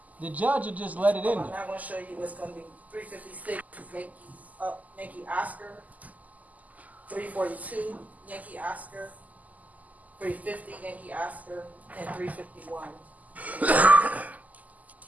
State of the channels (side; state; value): left; late; 0.078 ms